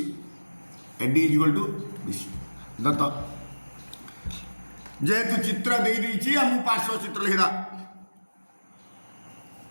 AD is equal to BC दत्त जेहेतु चित्र दे देती हम पार्श्व चित्र लिखा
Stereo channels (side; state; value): both; inverted; correlation -1.00